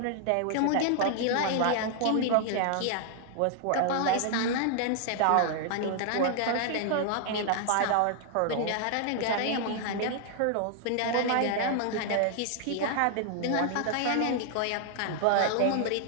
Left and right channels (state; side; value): different; both; correlation 0.00